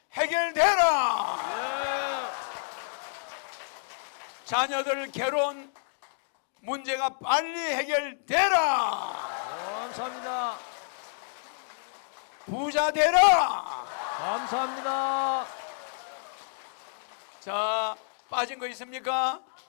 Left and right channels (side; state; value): right; silent; digital silence